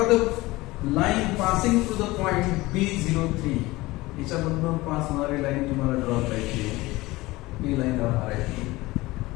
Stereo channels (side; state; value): right; quieter; 20.2 dB